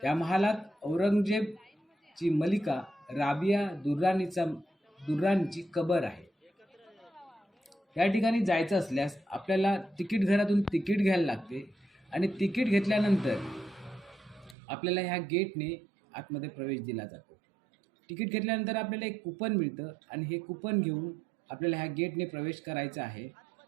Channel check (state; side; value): drops out; left; at 14.6 s